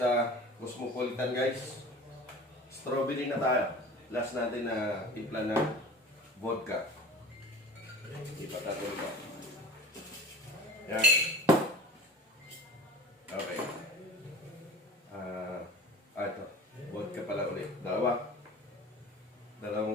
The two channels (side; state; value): both; normal; correlation 0.40